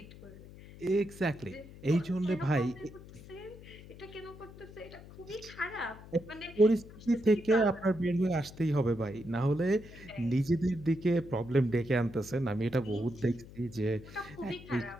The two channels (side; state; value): left; noise; hum, 17 dB below the sound